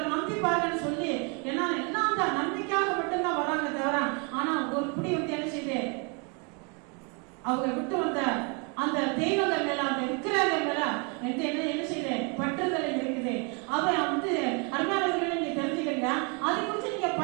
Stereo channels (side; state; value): left; quieter; 34.4 dB